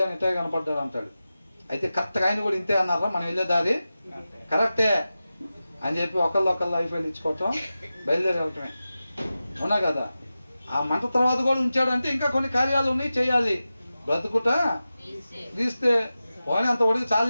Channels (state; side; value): inverted; both; correlation -0.94